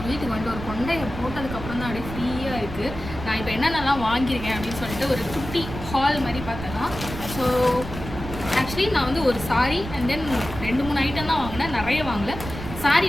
வீட்டுக்கு வந்துட்டு ஒரு கொண்டையை போட்டதுக்கப்புறம் தான் அப்படியே ஃப்ரீயாக இருக்குது. நான் இப்போ என்னென்னலாம் வாங்கியிருக்கேன் அப்படின்னு சொல்லிட்டு ஒரு குட்டி ஹால் மாதிரி பார்த்தலாம். ஸோ ஆக்சுவலி நான் வந்து ஒரு சாரி அண்ட் தென் 2-3 ஐட்டம் தான் வாங்கினேன், நிறைய வாங்கல. சாரி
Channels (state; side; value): noise; right; rumble, 9 dB below the sound